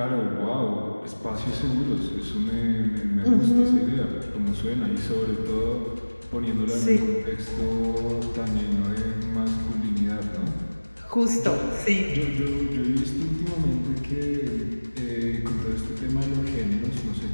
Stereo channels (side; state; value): both; inverted; correlation -1.00